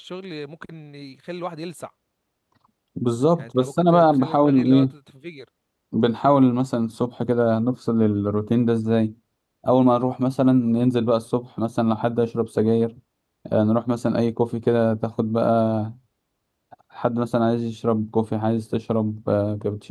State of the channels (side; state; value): both; identical; correlation 1.00